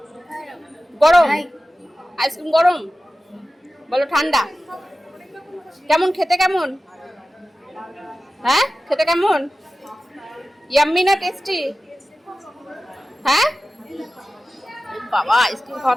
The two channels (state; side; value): normal; both; correlation 0.95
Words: গরম আইসক্রিম, গরম বলো ঠান্ডা? কেমন খেতে, কেমন? হ্যাঁ খেতে কেমন? ইয়াম্মি না টেস্টি? হ্যাঁ বাবা, আইসক্রিম